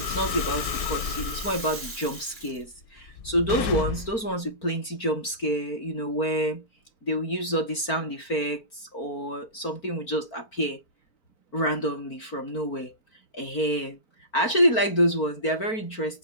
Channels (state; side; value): late; right; 4.4 ms